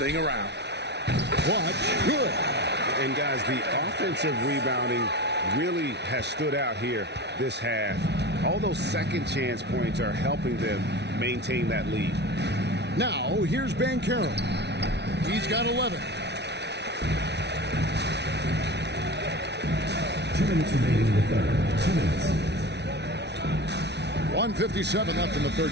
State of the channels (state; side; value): late; left; 0.50 ms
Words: around. Clutch, good. And guys, the offensive rebounding really has stood out here this half. All those second chance points are helping them maintain that lead. Now, here's Banchero. He's got 11. 2 minutes remaining in the third. 2 minutes. 1:57 left in the third